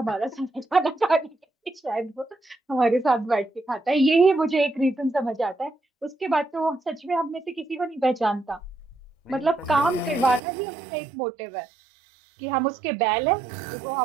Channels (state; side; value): drops out; left; at 10.4 s